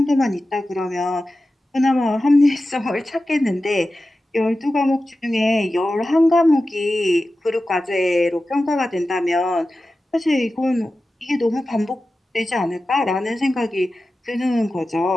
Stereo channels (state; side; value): normal; both; correlation 0.94